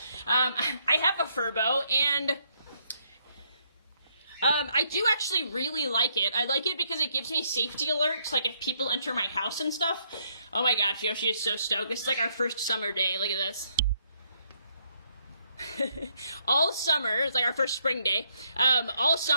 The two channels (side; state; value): both; inverted; correlation -0.72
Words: I have a Furbo, and I do actually really like it. I like it because it gives me safety alerts, like if people enter my house and stuff. Oh my gosh, Yoshi is so stoked. This is like our first summer day. Look at this. All summer, it's like our first spring day. All